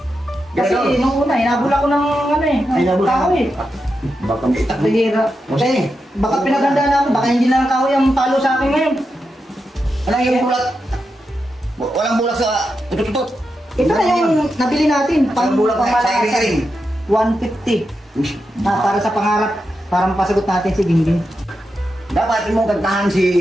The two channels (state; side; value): normal; both; correlation 0.88